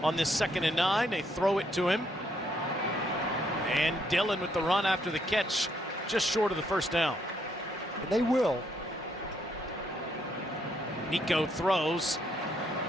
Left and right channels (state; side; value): normal; both; correlation 0.73